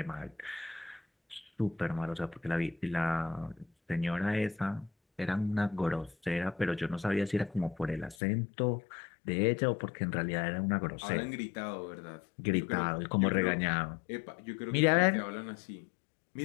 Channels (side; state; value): right; drops out; at 8.2 s